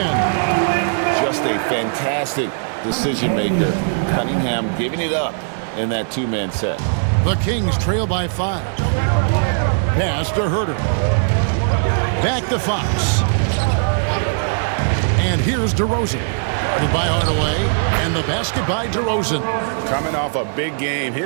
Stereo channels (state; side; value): silent; left; digital silence